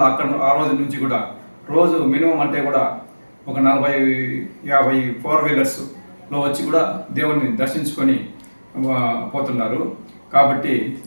అక్కడ ఆ రోజు నుంచి కూడా రోజు మినిమం అంటే కూడా ఒక 40-50 4 వీలర్స్లో వచ్చి కూడా దేవుణ్ణి దర్శించుకొని పోతున్నారు. కాబట్టి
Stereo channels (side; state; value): both; inverted; correlation -1.00